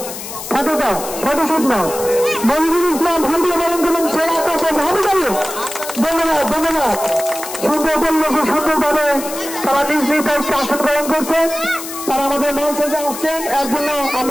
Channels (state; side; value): noise; left; hiss, 9 dB below the sound